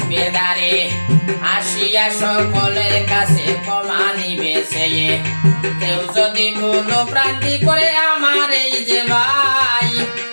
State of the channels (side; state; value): both; inverted; correlation -1.00